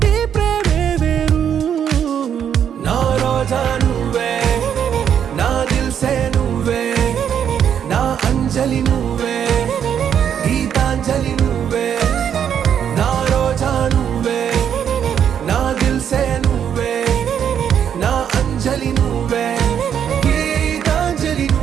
ఈ ప్రేమే వేరు నా రోజా నువ్వే నా దిల్ సే నువ్వే నా అంజలి నువ్వే గీతాంజలి నువ్వే నా రోజా నువ్వే నా దిల్ సే నువ్వే నా అంజలి నువ్వే గీతాంజలి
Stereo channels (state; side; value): quieter; left; 8.6 dB